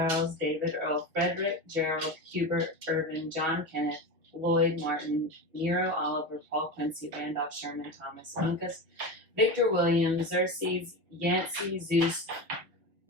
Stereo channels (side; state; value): left; late; 6.1 ms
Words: David, Earl, Frederick, Gerald, Hubert, Irvin, John Kenneth, Lloyd, Martin, Nero, Oliver, Paul Quincy, Randolph, Sherman, Thomas, Uncas, Victor Williams, Xerxes, Yancey, Zeus,